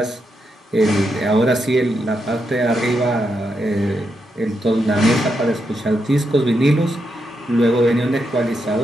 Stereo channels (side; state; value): both; normal; correlation 0.83